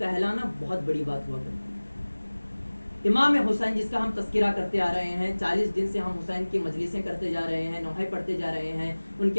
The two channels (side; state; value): both; inverted; correlation -1.00